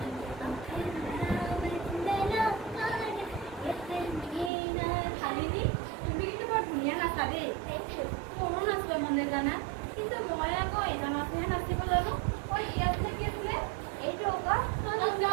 শালিনী তুমি কিন্তু বৰ ধুনীয়া নাচা দেই মনো নাচোৱে মানে জানা কিন্তু মই আকৌ এটা নাচেহে নাচিব জানো মই ইয়াত থাকি আছিলে এইটো আকৌ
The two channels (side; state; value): left; drops out; at 4.5 s